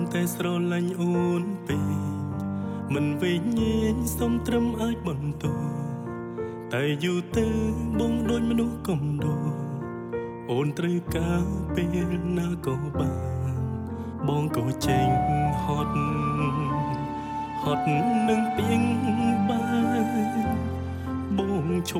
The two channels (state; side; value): identical; both; correlation 1.00